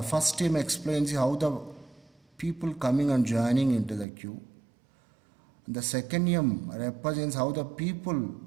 first term explains how the people coming and joining into the queue. The second M represents how the people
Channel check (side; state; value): left; drops out; at 4.0 s